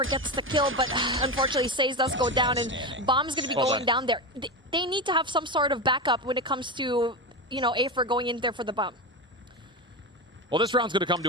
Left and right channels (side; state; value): both; normal; correlation 0.18